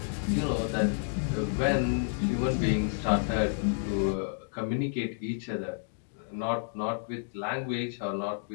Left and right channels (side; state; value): right; silent; digital silence